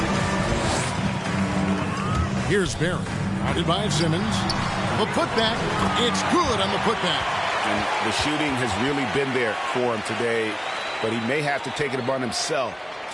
Here's Barry. Guarded by Simmons. The putback. It's good on the putback. And the shooting has really been there for him today, but he may have to take it upon himself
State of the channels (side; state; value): both; identical; correlation 1.00